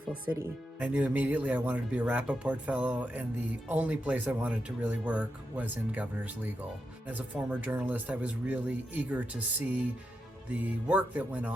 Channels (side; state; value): both; normal; correlation 0.86